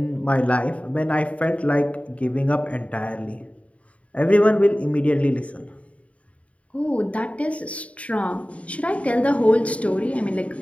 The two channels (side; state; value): right; late; 0.065 ms